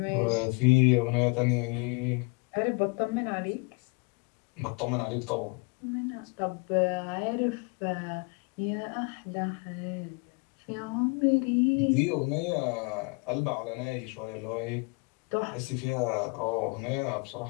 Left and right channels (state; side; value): quieter; right; 30.8 dB